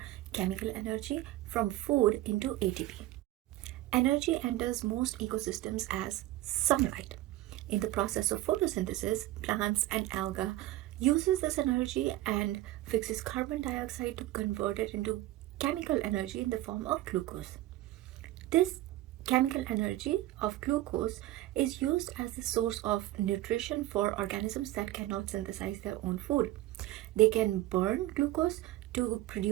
chemical energy from food into ATP. Energy enters most ecosystems as sunlight. In the process of photosynthesis, plants and algae uses this energy and fixes carbon dioxide to convert it into chemical energy in the form of glucose. This chemical energy of glucose is used as the source of nutrition for organisms that cannot synthesize their own food. They can burn glucose to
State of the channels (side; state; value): left; quieter; 16.0 dB